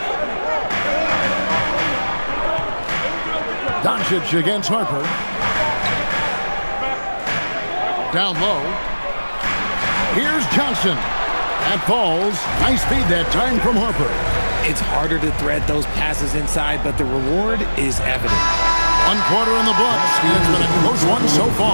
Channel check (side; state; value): both; inverted; correlation -1.00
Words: Doncic against Harper. Down low. Here's Johnson. That falls. Nice feed that time from Harper. It's harder to thread those passes inside, but the reward is evident. 1 quarter in the books. It's been a close one so